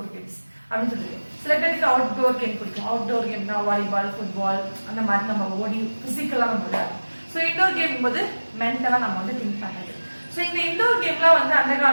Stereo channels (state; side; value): inverted; both; correlation -1.00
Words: கேம்ஸ் அப்படின்னு சொல்லிட்டு சில பேருக்கு அவுட்டோர் கேம் பிடிக்கும் அவுட்டோர் கேம்னா வாலிபால் ஃபுட்பால் அந்த மாதிரி நம்ம ஓடி பிசிக்கலா நம்ம விளையாடும் ஸோ இன்டோர் கேம் போது மென்டலா நம்ம வந்து திங்க் பண்ணுறது ஸோ இந்த இன்டோர் கேம்லாம் வந்து அந்த